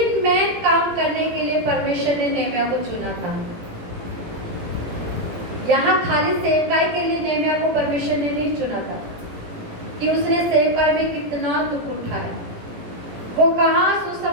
मेन काम करने के लिए परमेश्वर ने नेहमिया को चुना था। यहाँ खाली सेवकाई के लिए नेहमिया को परमेश्वर ने नहीं चुना था कि उसने सेवकाई में कितना दुख उठाया, वो कहाँ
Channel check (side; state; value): left; late; 17 ms